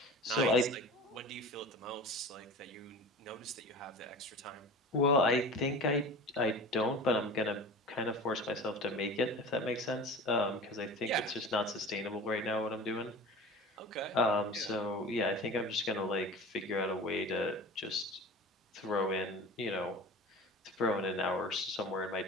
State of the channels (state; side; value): normal; both; correlation 0.36